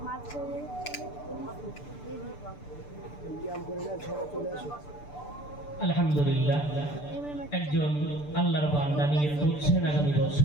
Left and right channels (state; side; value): late; right; 6.8 ms